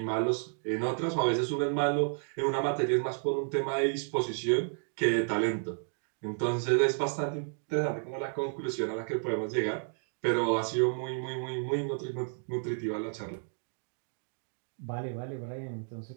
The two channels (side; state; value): left; silent; digital silence